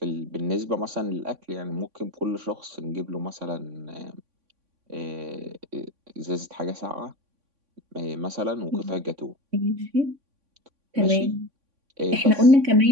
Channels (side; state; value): left; late; 3.5 ms